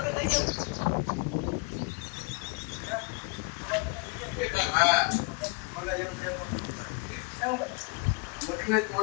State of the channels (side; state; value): right; quieter; 30.4 dB